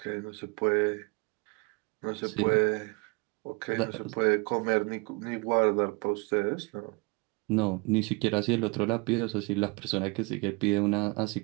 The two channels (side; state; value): left; quieter; 28.7 dB